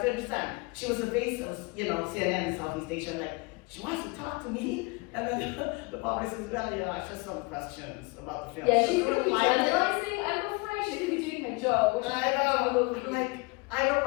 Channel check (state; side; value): quieter; right; 27.6 dB